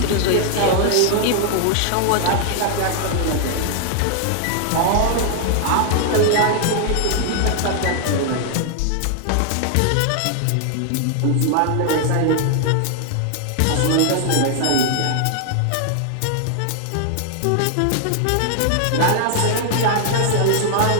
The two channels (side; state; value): both; different; correlation 0.00